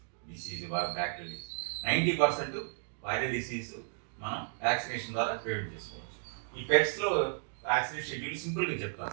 డిసీజ్ బ్యాక్టీరియల్. 90% వైరల్ డిసీజ్ మనం వ్యాక్సినేషన్ ద్వారా ప్రివెంట్ చేసుకోవచ్చు. ఈ పెట్స్లో వ్యాక్సినేషన్ షెడ్యూల్ సింపుల్గా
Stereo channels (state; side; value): silent; left; digital silence